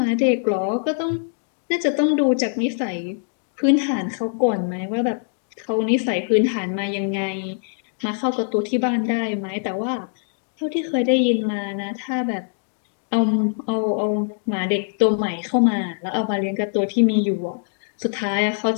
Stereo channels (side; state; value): right; silent; 64 dB below the other